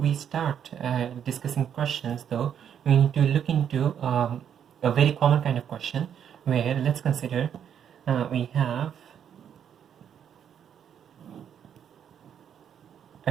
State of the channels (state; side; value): quieter; left; 8.7 dB